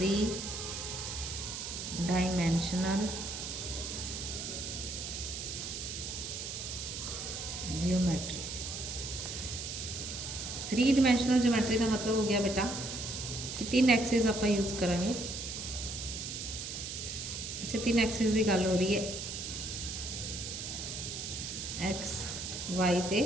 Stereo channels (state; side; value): noise; right; hiss, 6 dB below the sound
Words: dimensional geometry. 3 dimensional geometry का मतलब हो गया बेटा कि 3 एक्सिस आप यूज़ करांगे। अच्छा 3 एक्सिस की गल हो रही है, एक्स वाई ते